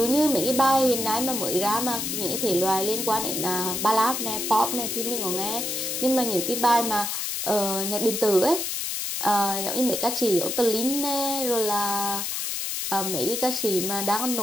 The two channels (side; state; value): left; noise; hiss, 2 dB below the sound